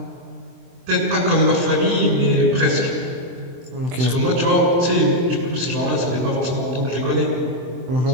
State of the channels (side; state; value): left; late; 23 ms